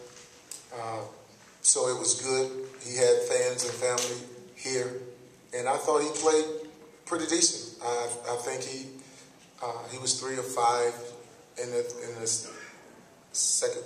so it was good. He had fans and family here, and I thought he played pretty decent. I think he was 3 of 5 in the second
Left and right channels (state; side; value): identical; both; correlation 1.00